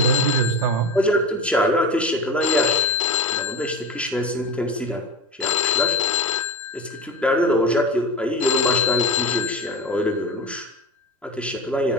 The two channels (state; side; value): normal; both; correlation 0.26